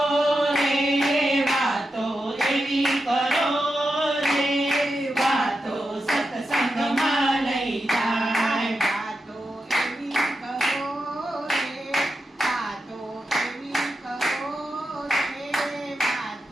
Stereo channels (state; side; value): normal; both; correlation 0.88